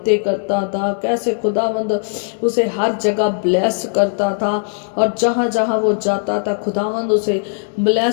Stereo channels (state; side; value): silent; right; digital silence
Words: करता था, कैसे खुदावंद उसे हर जगह ब्लेस करता था, और जहाँ जहाँ वो जाता था खुदावंद उसे